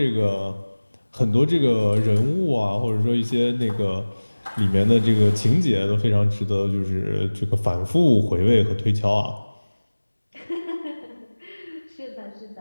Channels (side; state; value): both; inverted; correlation -1.00